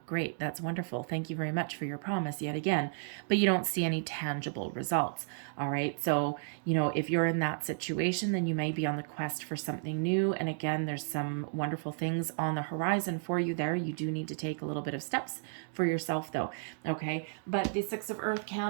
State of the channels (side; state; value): left; silent; digital silence